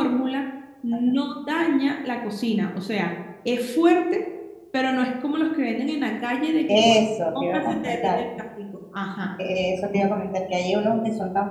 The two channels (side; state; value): both; identical; correlation 1.00